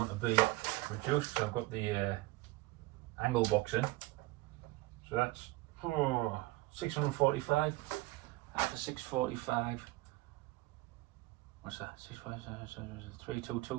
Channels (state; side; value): quieter; left; 19.7 dB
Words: to be reduced, so I've got the angle box in. So that's 645. After 645, what's that?